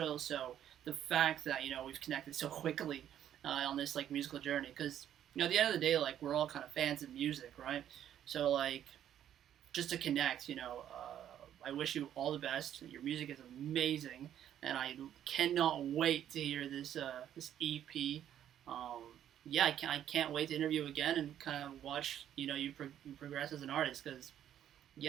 So the fact that, you know, we've connected so quickly on this like musical journey, because, you know, at the end of the day, like, we're all kind of fans of music, right? So like, just to connect, you know, I wish you all the best. Your music is amazing, and I cannot wait to hear this this EP. Yeah, I can't wait to interview again and kind of watch, you know, you progress as an artist, because,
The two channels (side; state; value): left; quieter; 10.5 dB